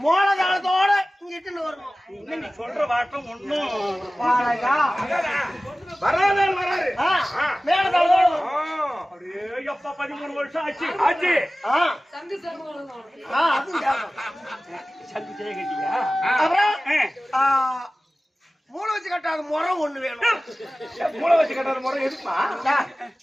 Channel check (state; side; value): normal; both; correlation 0.97